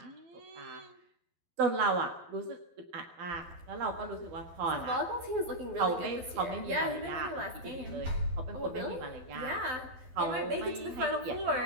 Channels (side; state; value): left; late; 12 ms